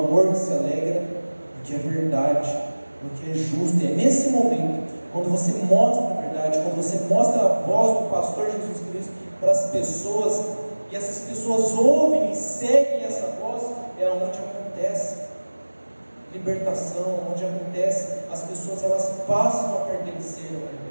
se alegra no que é verdade, no que é justo. E é nesse momento, quando você mostra a verdade, quando você mostra a voz do pastor Jesus Cristo para as pessoas, e essas pessoas ouvem e seguem essa voz, é onde acontece libertação, onde acontece, as pessoas elas passam a pertencer ao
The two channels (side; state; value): both; inverted; correlation -1.00